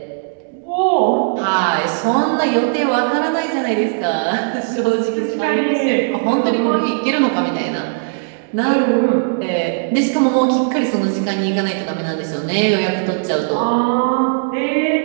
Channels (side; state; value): left; silent; digital silence